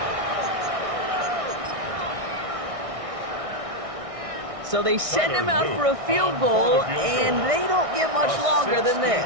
So they send him out for a field goal, and they don't get much longer than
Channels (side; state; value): left; late; 1.6 ms